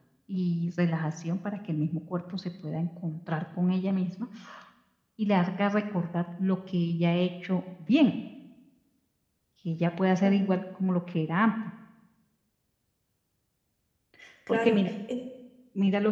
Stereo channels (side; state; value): both; identical; correlation 1.00